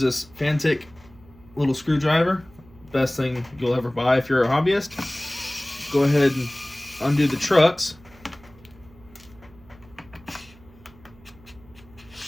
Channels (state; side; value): noise; right; hum, 25 dB below the sound